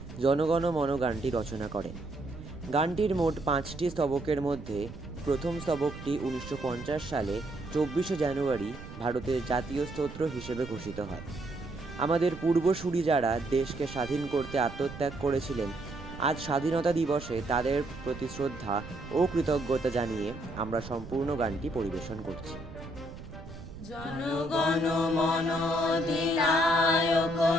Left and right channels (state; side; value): noise; right; rumble, 13 dB below the sound